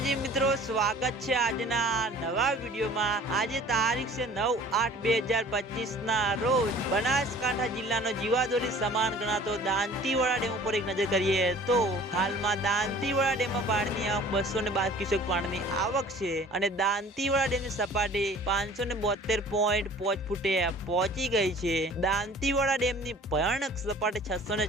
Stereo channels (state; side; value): normal; both; correlation 0.48